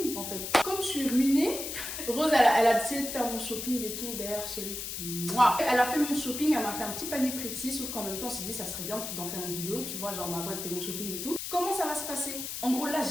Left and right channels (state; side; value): noise; left; hiss, 6 dB below the sound